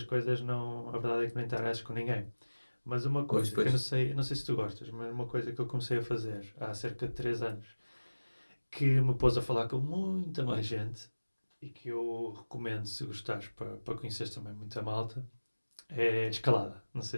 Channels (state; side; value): inverted; both; correlation -1.00